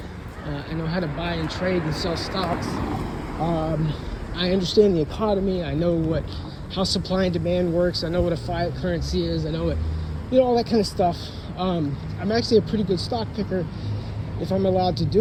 I know how to buy and trade and sell stocks. I understand the economy. I know how supply and demand works. I know what a fiat currency is. I know all that kind of stuff. I'm actually a pretty good stock picker if I'm allowed to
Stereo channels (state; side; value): identical; both; correlation 1.00